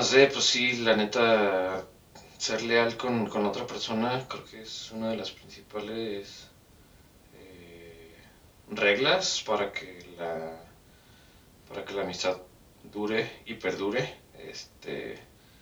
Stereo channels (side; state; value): both; identical; correlation 1.00